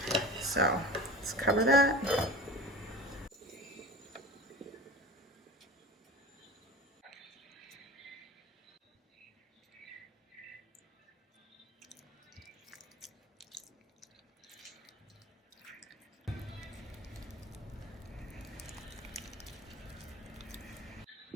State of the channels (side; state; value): both; normal; correlation 0.33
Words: So let's cover that.